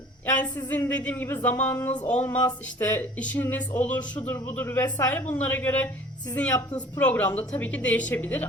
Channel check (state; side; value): normal; both; correlation 0.48